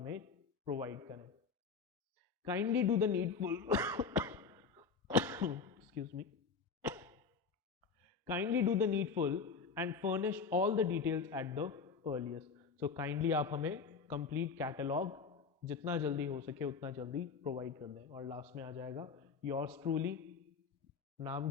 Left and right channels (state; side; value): quieter; right; 5.3 dB